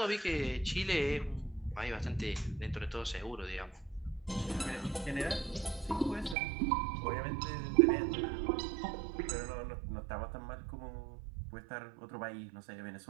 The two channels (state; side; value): drops out; left; at 6.4 s